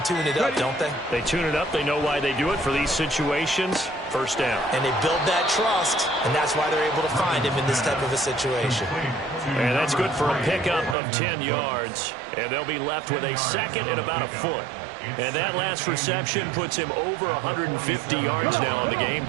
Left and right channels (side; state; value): left; drops out; at 11.0 s